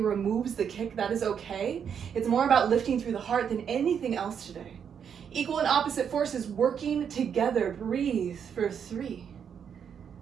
the kick. That is okay. It's more about lifting through the heart than anything else today. Equal and opposite forces working together. Breathe for 3.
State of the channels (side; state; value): left; quieter; 7.7 dB